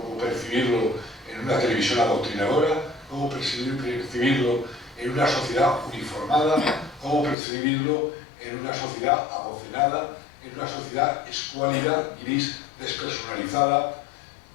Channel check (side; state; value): right; drops out; at 7.4 s